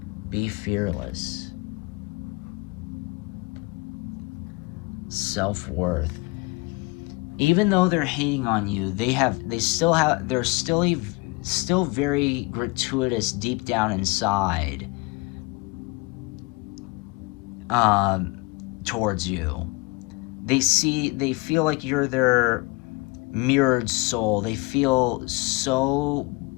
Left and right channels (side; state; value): right; quieter; 26.0 dB